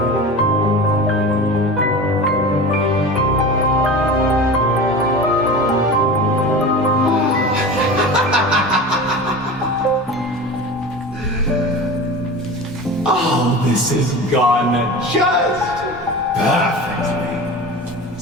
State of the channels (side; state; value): both; normal; correlation 0.32